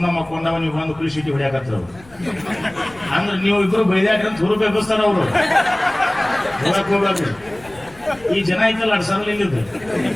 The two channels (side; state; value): left; noise; rumble, 24 dB below the sound